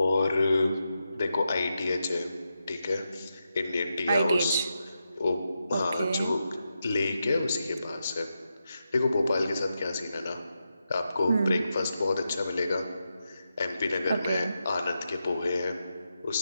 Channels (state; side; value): inverted; both; correlation -0.87